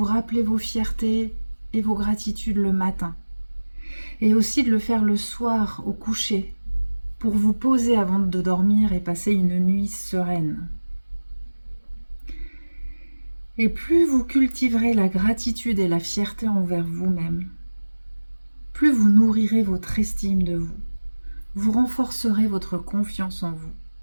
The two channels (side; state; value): both; inverted; correlation -1.00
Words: rappeler vos fiertés et vos gratitudes le matin. Et aussi de le faire le soir au coucher pour vous poser avant de dormir et passer une nuit sereine. Et plus vous cultiverez la gratitude et la fierté envers vous-même, plus vous nourrirez votre estime de vous, vous renforcerez votre confiance en vous